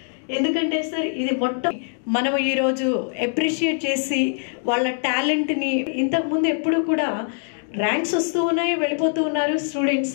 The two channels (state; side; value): silent; right; digital silence